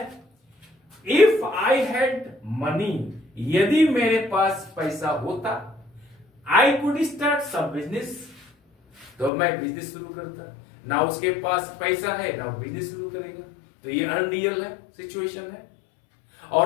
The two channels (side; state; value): right; drops out; at 9.3 s